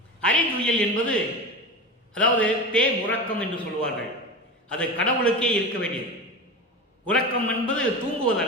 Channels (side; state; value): both; normal; correlation 0.26